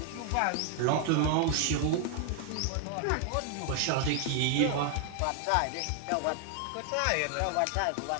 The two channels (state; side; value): different; both; correlation 0.00